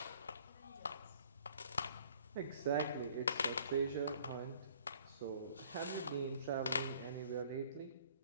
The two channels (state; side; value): inverted; both; correlation -0.56